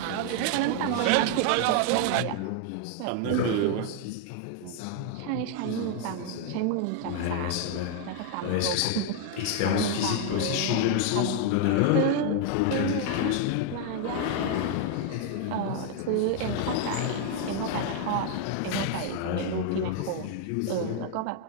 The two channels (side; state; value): both; different; correlation 0.00